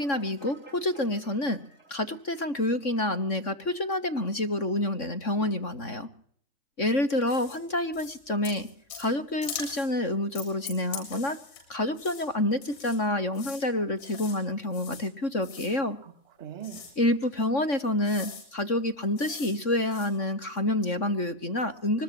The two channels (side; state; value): right; late; 3.6 ms